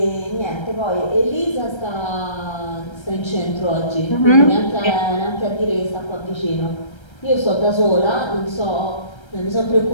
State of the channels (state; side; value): late; right; 1.3 ms